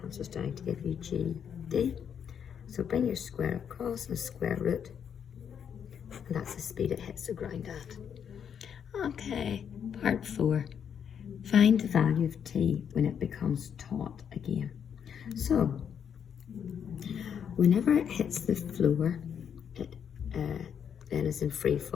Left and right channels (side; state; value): right; quieter; 8.0 dB